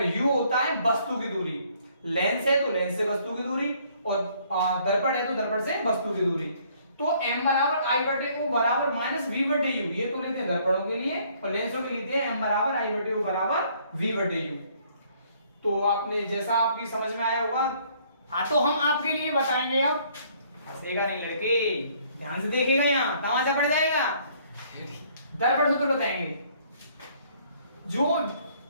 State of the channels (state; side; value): inverted; both; correlation -0.63